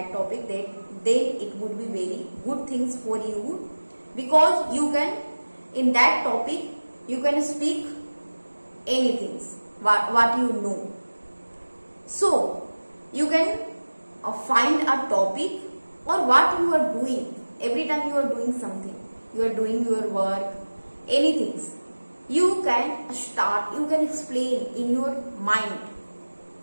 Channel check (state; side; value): inverted; both; correlation -1.00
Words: topic, then it would be very good things for you, because you can, in that topic, you can speak anything what you know. So you can find a topic or what you are doing. Every time you are doing something, you are doing your work, anything, you can start, you can explain in your mind